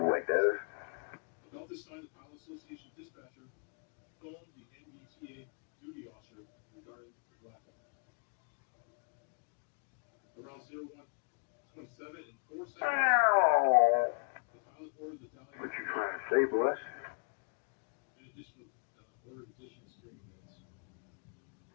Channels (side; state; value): right; quieter; 36.7 dB